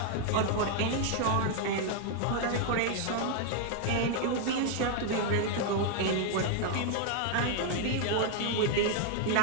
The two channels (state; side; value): different; both; correlation 0.00